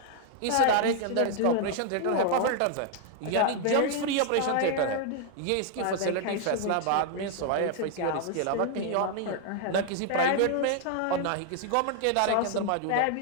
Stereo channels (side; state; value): both; different; correlation 0.00